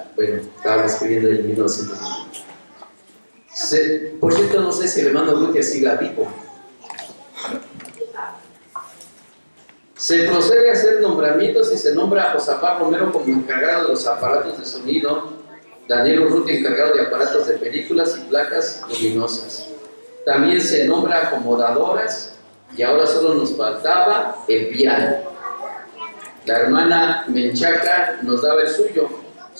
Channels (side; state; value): both; inverted; correlation -1.00